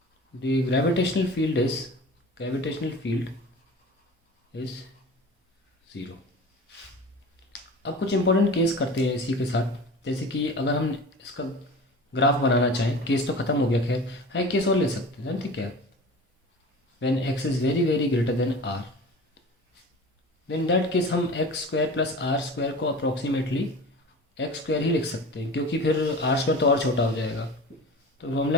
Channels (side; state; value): both; normal; correlation 0.36